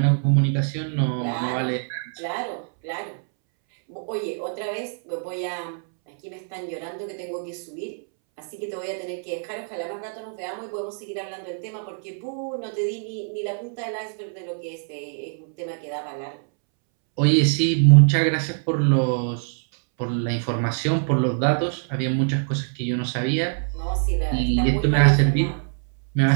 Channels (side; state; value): left; silent; 62 dB below the other